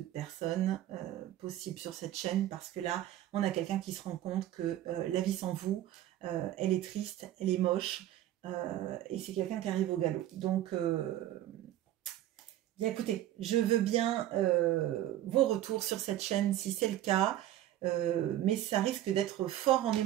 personnes possible sur cette chaîne, parce que là, on a quelqu'un qui se rend compte que la vie sans vous, elle est triste, elle est moche, et c'est quelqu'un qui arrive au galop. Donc, bien écoutez, je veux bien vos retours sur cette chaîne si c'est le cas, mais ça risque d'être fort en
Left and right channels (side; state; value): left; quieter; 13.1 dB